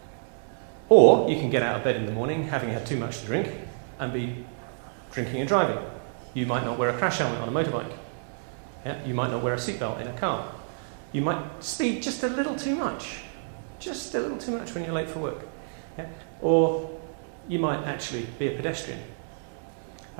Or you can get out of bed in the morning having had too much to drink and be drinking and driving. You might not wear a crash helmet on a motorbike. Yeah? You might not wear a seatbelt in a car. You might speed just a little too much when you're late for work. Yeah? Or you might actually be a pedestrian.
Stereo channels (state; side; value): silent; left; digital silence